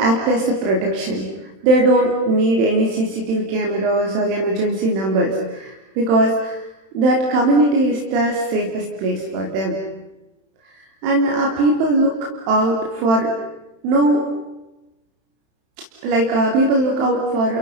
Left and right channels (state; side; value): late; left; 31 ms